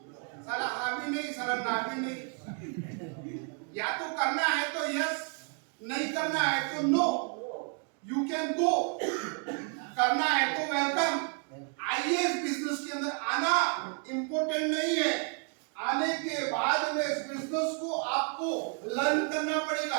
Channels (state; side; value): quieter; left; 39.9 dB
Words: साला हाँ भी नहीं, साला ना भी नहीं। या तो करना है तो यस, नहीं करना है तो नो। यू कैन गो, करना है तो वेलकम। आइए, इस बिजनेस के अंदर आना इंपॉर्टेंट नहीं है, आने के बाद में इस बिजनेस को आपको लर्न करना